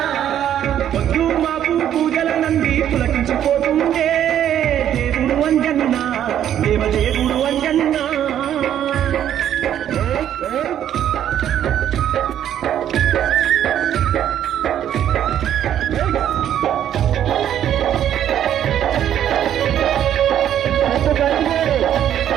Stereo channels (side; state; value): left; quieter; 10.5 dB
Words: పొద్దు మాపు పూజల నంది పులకించిపోతుందే దేవుడు అంజన్న దేవదేవుడు అంజన్న